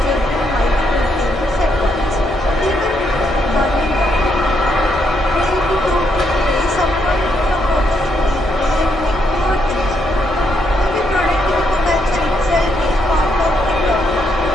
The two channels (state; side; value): normal; both; correlation 0.76